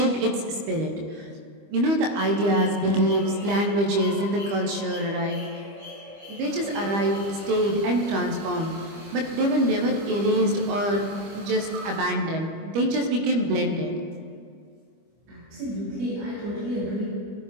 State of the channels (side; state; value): left; late; 25 ms